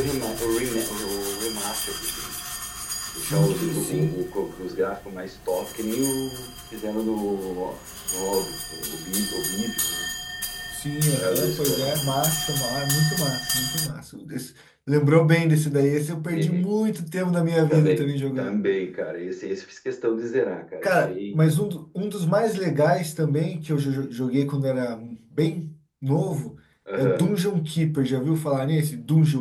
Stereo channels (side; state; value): both; identical; correlation 1.00